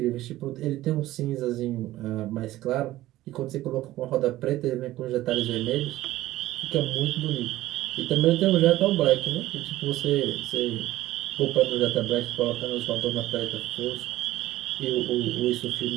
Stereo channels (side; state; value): left; quieter; 15.8 dB